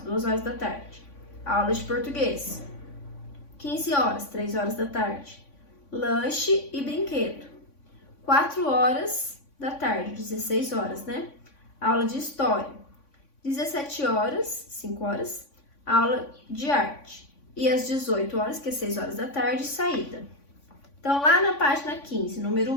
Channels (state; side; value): late; right; 3.5 ms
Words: horas da tarde, aula de português. 15 horas, 3 horas da tarde, lanche e brinquedo. 4 horas da tarde, 16 horas, né? Aula de história. 17 horas, 5 horas, aula de arte. E às 18 horas, que é 6 horas da tarde, saída. Então, lá na página 15, número